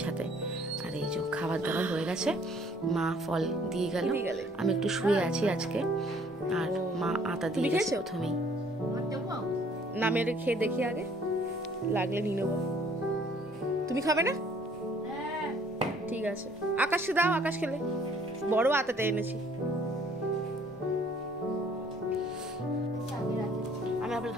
সাথে। আর এই যে খাবার দাবার হয়ে গেছে, মা ফল দিয়ে গেল, আমি একটু শুয়ে আছি আজকে। আর মা আটা দিয়ে গেছে প্রথমেই। না মেরে খেয়ে দেখি, আগে লাগলে নিয়ে নেবো। তুমি খাবে না? ঠিক আছে, আকাশকে দাও, আকাশ খেলে। বড় আতাটা এনেছি। আমি আপেল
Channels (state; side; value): normal; both; correlation 0.59